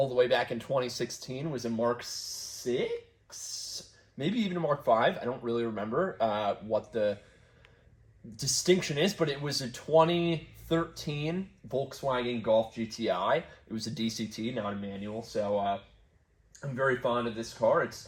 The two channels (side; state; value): both; identical; correlation 1.00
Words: the way back in 2016 was a Mark 6, maybe even a Mark 5. I don't really remember what the distinction is, but it was a 2013 Volkswagen Golf GTI. It was a DCT, not a manual, so I'm very fond of this car.